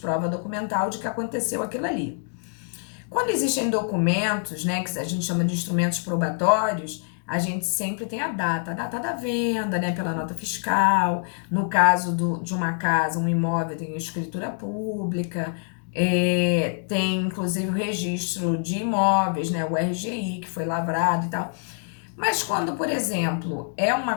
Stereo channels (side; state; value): right; silent; 57 dB below the other